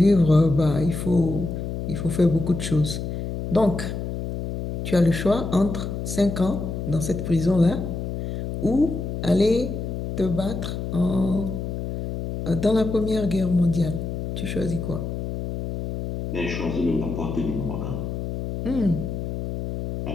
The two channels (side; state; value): left; noise; hum, 5 dB below the sound